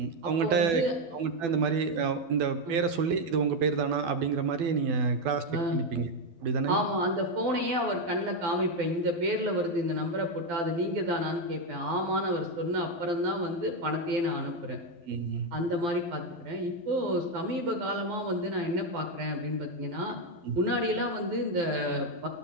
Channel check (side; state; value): left; late; 12 ms